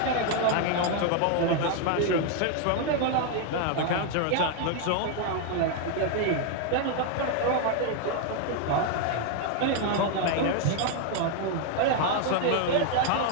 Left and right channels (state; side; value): different; both; correlation 0.00